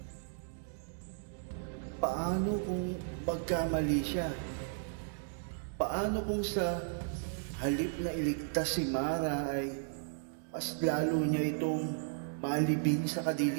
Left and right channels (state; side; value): silent; left; digital silence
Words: Paano kung magkamali siya? Paano kung sa halip na iligtas si Mara ay mas lalo niya itong malibing sa